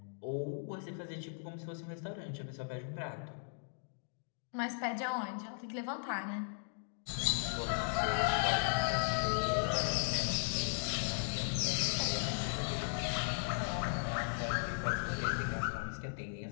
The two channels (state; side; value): silent; right; digital silence